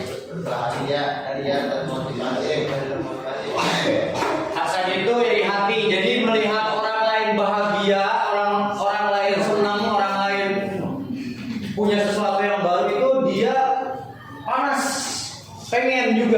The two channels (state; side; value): identical; both; correlation 1.00